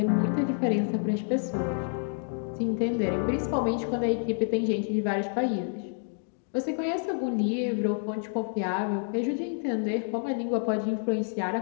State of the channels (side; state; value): right; silent; digital silence